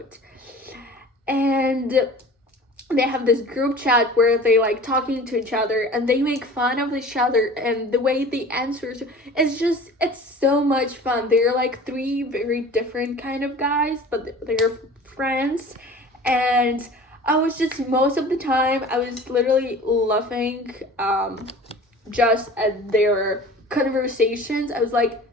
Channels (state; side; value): normal; both; correlation 0.42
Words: and they have this group chat where they like talking to each other and they make fun of each other, and the way they answer, it's so much fun. They're like three very different kind of guys, but they're friends. And I was just, most of the time I was literally laughing just at their conversations. I was like,